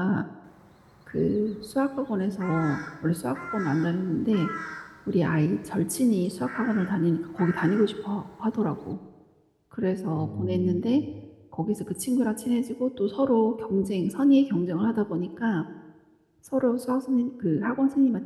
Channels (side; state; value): both; identical; correlation 1.00